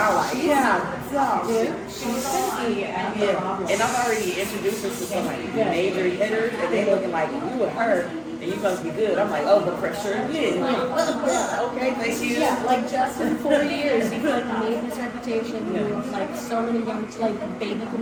I'm like, Dude, she's gonna be a problem. And I've already introduced her to some like major hitters, and they looking like, you and her, and you must be good. I'm like, oh, the pressure again. Okay, thank you. Yeah, like just in 4 years, you've like made this reputation. With, like so many young, like baby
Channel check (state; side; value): identical; both; correlation 1.00